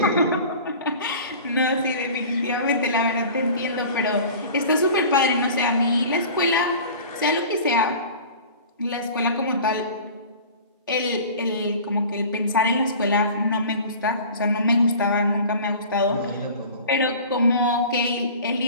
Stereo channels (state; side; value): inverted; both; correlation -0.40